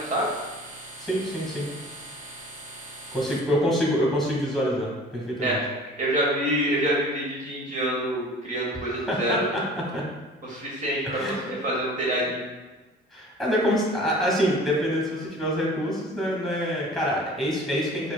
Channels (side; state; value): both; normal; correlation 0.44